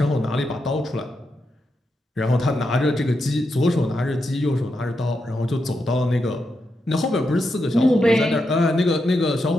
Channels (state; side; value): normal; both; correlation 0.85